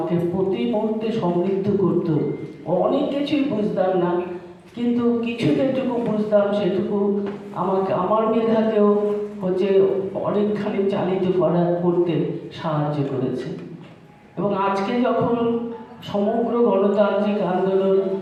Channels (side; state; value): both; identical; correlation 1.00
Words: প্রতি মুহূর্তে সমৃদ্ধ করত। অনেক কিছুই বুঝতাম না, কিন্তু কিছু যেটুকু বুঝতাম সেটুকু আমার মেধাকেও অনেকখানি চালিত করতে সাহায্য করেছে। এবং আজকে যখন সমগ্র গণতান্ত্রিক আন্দোলন